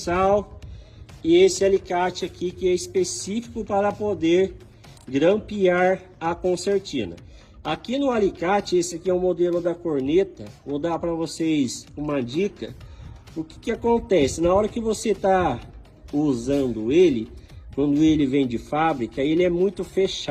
e esse alicate aqui que é específico para poder grampear a concertina. Aqui no alicate, esse aqui é o modelo da corneta. Vou dar para vocês uma dica. O que acontece na hora que você está usando ele, quando ele vem de fábrica, ele é muito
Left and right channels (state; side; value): identical; both; correlation 1.00